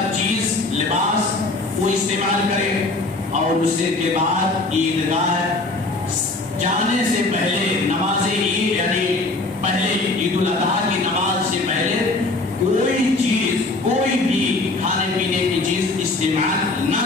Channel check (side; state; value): right; quieter; 3.1 dB